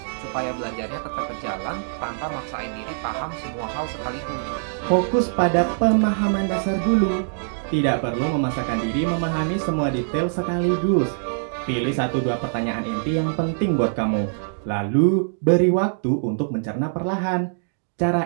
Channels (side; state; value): left; silent; digital silence